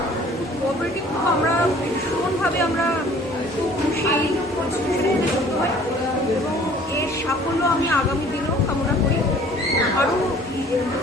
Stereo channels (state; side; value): noise; right; hum, 24 dB below the sound